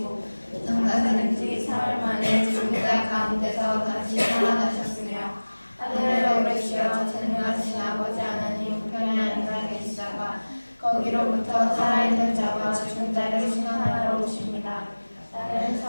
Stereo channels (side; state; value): both; inverted; correlation -1.00